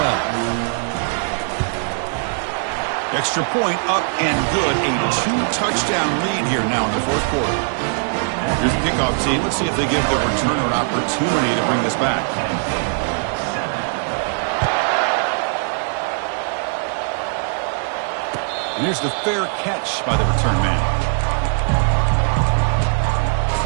Extra point up and good. A 2-touchdown lead here now in the 4th quarter. Here's the kickoff team. Let's see if they give the returner an opportunity to bring this back. And here's the fair catch by the return man.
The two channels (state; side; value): silent; left; 62 dB below the other